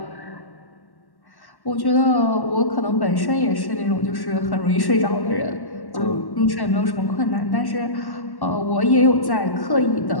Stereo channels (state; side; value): late; right; 1.1 ms